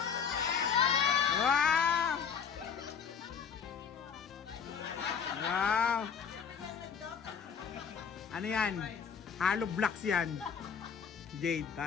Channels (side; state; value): right; quieter; 6.8 dB